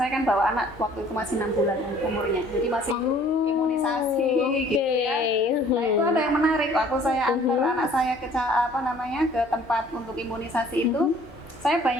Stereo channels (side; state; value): both; normal; correlation 0.55